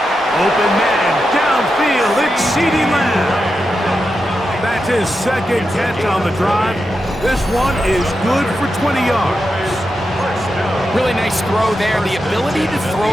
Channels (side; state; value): both; normal; correlation 0.88